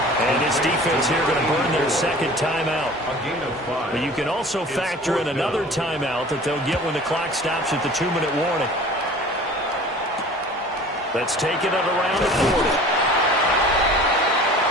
And his defense here going to burn their 2nd timeout. But you can also factor in another timeout that they'll get when the clock stops at the 2-minute warning. Let's take it at around the 40.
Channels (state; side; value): normal; both; correlation 0.44